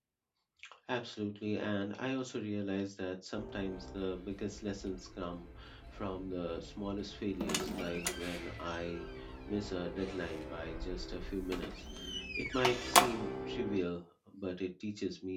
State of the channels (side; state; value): both; identical; correlation 1.00